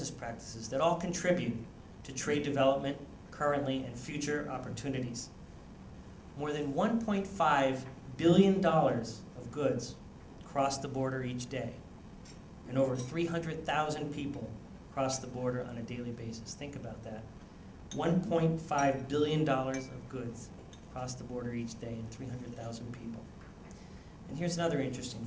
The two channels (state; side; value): identical; both; correlation 1.00